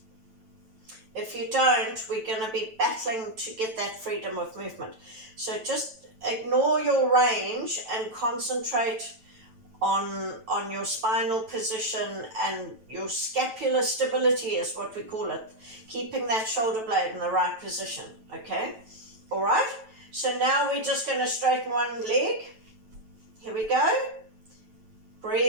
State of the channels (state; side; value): late; left; 9.1 ms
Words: If you don't, we're going to be battling to get that freedom of movement. So just ignore your range and concentrate on your spinal position and your scapular stability is what we call it. Keeping that shoulder blade in the right position, okay? All right? So now we're just going to straighten one leg. Here we go.